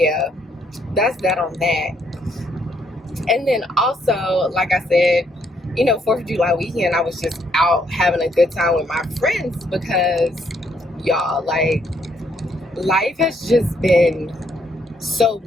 that's that on that. And then also, like I said, you know, 4th of July weekend, I was just out having a good time with my friends because y'all, like, life has just been so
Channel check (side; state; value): both; normal; correlation 0.71